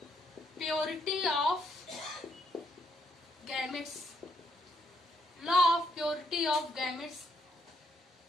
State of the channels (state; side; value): normal; both; correlation 0.74